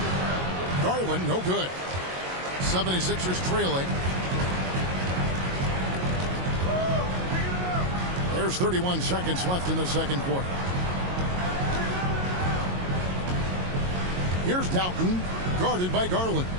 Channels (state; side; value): late; left; 22 ms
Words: Garland, no good. 76ers trailing. There's 31 seconds left in the second quarter. Here's Doughton, guarded by Garland.